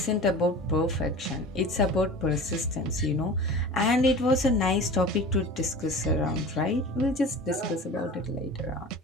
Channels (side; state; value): both; normal; correlation 0.37